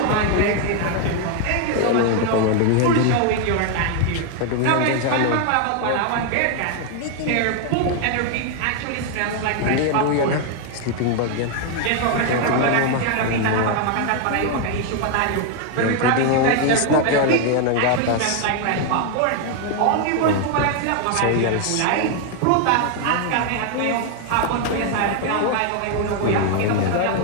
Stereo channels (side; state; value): both; different; correlation 0.00